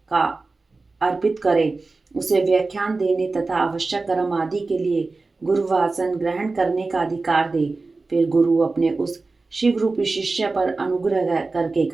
का अर्पित करे। उसे व्याख्यान देने तथा आवश्यक कर्म आदि के लिए गुरुवासन ग्रहण करने का अधिकार दे। फिर गुरु अपने उस शिव रूपी शिष्य पर अनुग्रह करके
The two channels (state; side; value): quieter; left; 3.7 dB